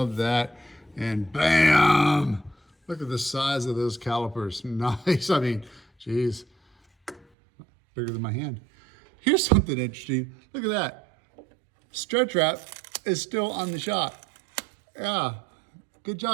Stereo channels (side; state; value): left; drops out; at 7.2 s